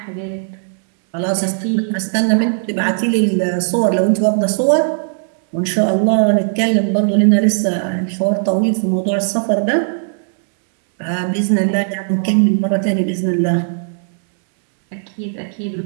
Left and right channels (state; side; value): silent; left; digital silence